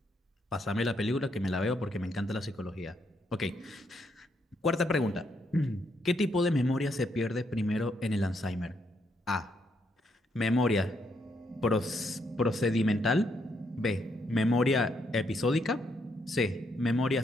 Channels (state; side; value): normal; both; correlation 0.75